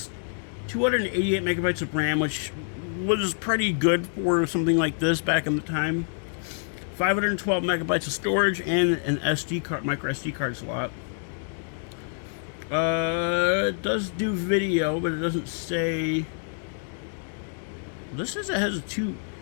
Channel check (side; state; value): right; silent; 60 dB below the other